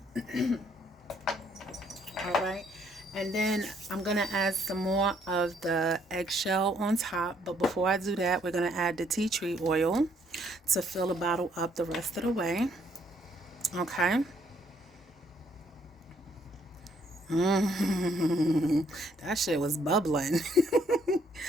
All right. And then I'm going to add some more of the eggshell on top. But before I do that, we're going to add the tea tree oil to fill the bottle up the rest of the way. Okay. That shit was bubbling.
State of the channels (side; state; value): both; normal; correlation 0.68